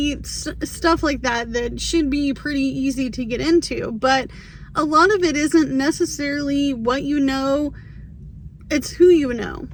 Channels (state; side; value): identical; both; correlation 1.00